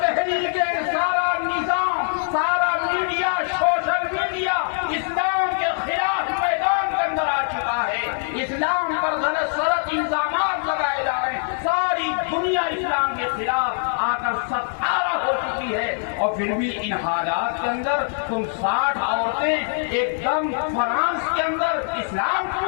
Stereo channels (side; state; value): right; silent; digital silence